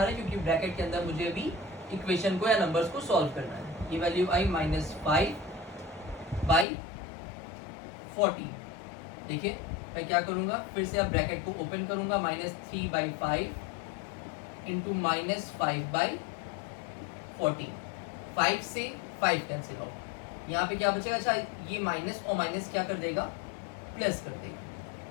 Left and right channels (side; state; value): right; drops out; at 6.7 s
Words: है क्योंकि ब्रैकेट के अंदर मुझे अभी इक्वेशन को या नंबर्स को सॉल्व करना है। ये वैल्यू आई -5/14। देखिए मैं क्या करूंगा, फिर से अब ब्रैकेट को ओपन करूंगा, -3/5 इंटू -5/14। 5 से 5 कैंसिल आउट, यहाँ पे क्या बचेगा, अच्छा ये माइनस और माइनस क्या कर देगा, प्लस कर देगा,